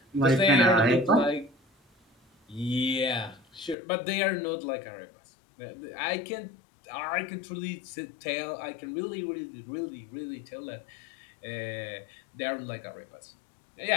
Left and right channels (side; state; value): right; drops out; at 3.8 s